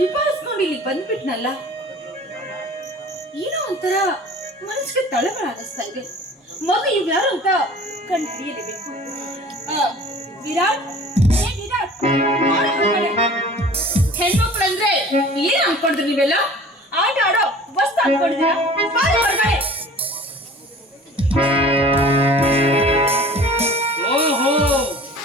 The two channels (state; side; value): normal; both; correlation 0.45